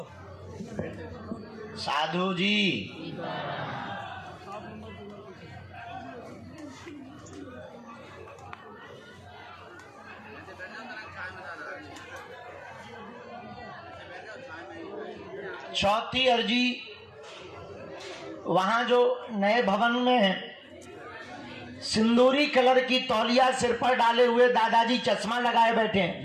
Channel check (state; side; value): identical; both; correlation 1.00